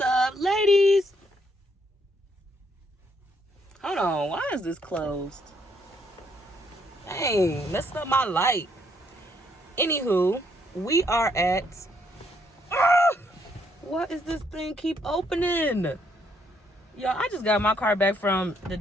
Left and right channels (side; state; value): both; normal; correlation 0.71